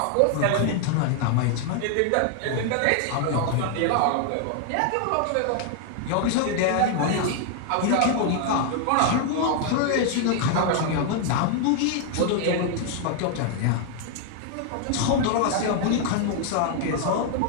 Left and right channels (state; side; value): different; both; correlation 0.00